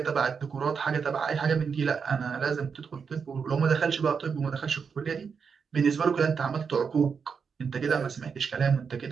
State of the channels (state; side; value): quieter; left; 6.0 dB